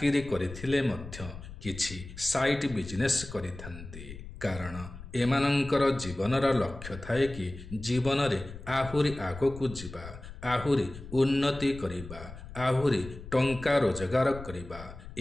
करिथिले मध्य किछि साइट बिजनेस करिथान्ति, कारण एमानंकर जीवनर लक्ष्य थाए कि जीवन रे आहुरी आगकू जिबा, आहुरी उन्नति करिबा, आहुरी टंका रोजगार करिबा।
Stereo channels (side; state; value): left; noise; rumble, 13 dB below the sound